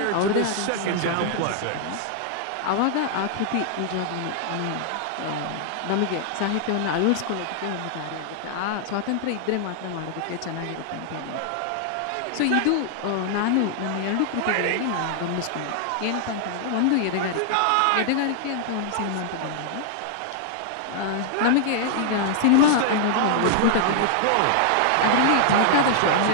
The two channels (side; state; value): both; different; correlation -0.01